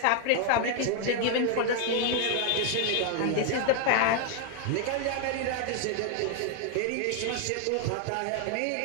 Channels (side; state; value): both; different; correlation 0.00